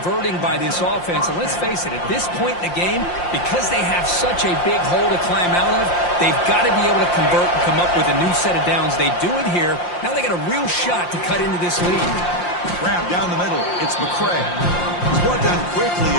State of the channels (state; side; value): late; right; 5.7 ms